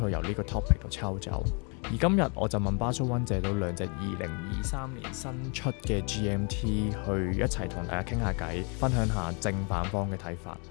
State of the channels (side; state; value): right; quieter; 35.6 dB